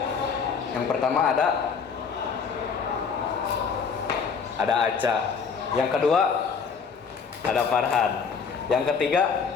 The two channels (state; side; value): quieter; right; 5.8 dB